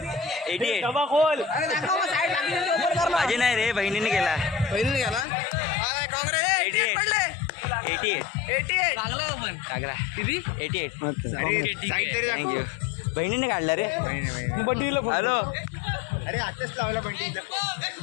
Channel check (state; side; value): drops out; right; at 5.2 s